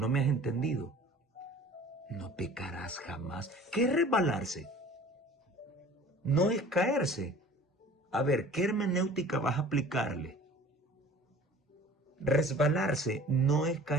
me has entendido. No pecarás jamás. ¿Qué es resbalarse? No es caerse. A ver, ¿qué hermenéutica vas a aplicarle? Resbalarse no es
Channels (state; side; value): normal; both; correlation 0.46